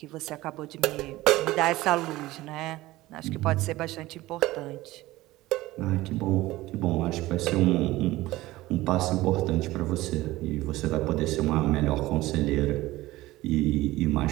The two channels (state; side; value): quieter; left; 17.8 dB